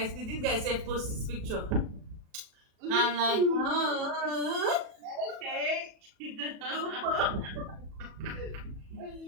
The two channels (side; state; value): left; late; 37 ms